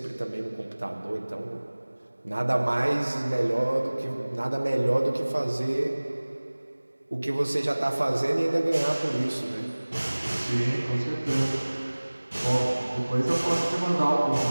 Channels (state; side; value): inverted; both; correlation -1.00